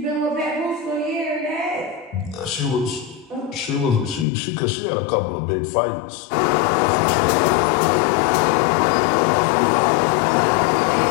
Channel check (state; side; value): drops out; right; at 4.2 s